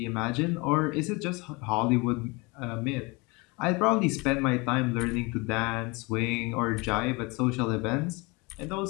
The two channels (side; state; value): right; quieter; 26.6 dB